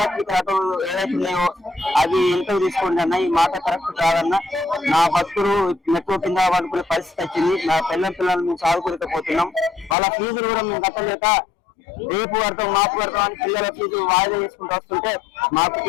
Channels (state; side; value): drops out; right; at 10.0 s